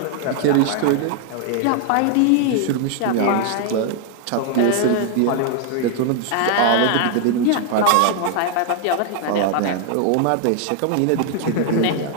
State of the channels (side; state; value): both; different; correlation 0.00